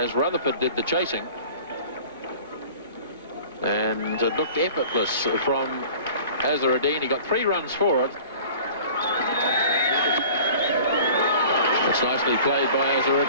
Rutherford did the chasing. And it looked effortless from Azharuddin. He got 3 runs for it. It's nicely played by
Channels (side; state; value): both; inverted; correlation -0.44